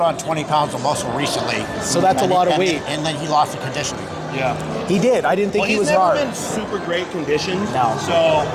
on 20 pounds of muscle recently. So that's a lot of weight. And then he lost the conditioning. Yeah. He did. I didn't think he was he's hard. never been super great conditioned. No. So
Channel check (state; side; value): identical; both; correlation 1.00